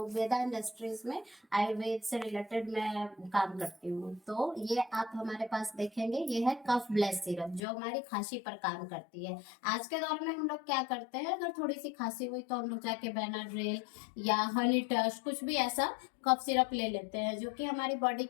वेदा इंडस्ट्रीज में आयुर्वेद से रिलेटेड मैं काम करती हूँ। तो ये आप हमारे पास देखेंगे, ये है कफ ब्लेस सिरप जो हमारी खांसी पर काम करती है। आज के दौर में हम लोग क्या करते हैं, अगर थोड़ी सी खांसी हुई तो हम लोग जाके बेनाड्रिल या हनी टच कुछ भी ऐसा कफ सिरप ले लेते हैं, जो कि हमारी बॉडी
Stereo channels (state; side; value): drops out; right; at 7.6 s